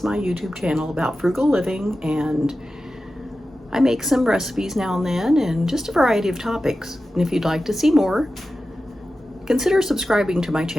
my YouTube channel about frugal living, and I make some recipes now and then and just a variety of topics. And if you'd like to see more, consider subscribing to my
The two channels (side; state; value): both; normal; correlation 0.93